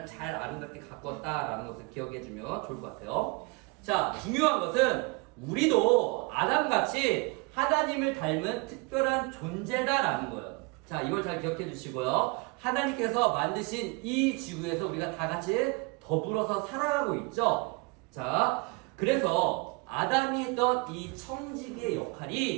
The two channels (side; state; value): left; quieter; 28.4 dB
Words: 잘 아름답게 가꿨다라는 것을 기억해주면 좋을 것 같아요. 자, 중요한 것은 우리도 아담같이 하나님을 닮은 특별한 존재다라는 거예요. 자, 이걸 잘 기억해 주시고요. 하나님께서 만드신 이 지구에서 우리가 다 같이 더불어서 살아가고 있죠. 자, 그래서 아담이 했던 이 청지기의